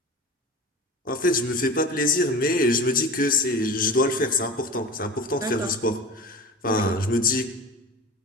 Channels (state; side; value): normal; both; correlation 0.34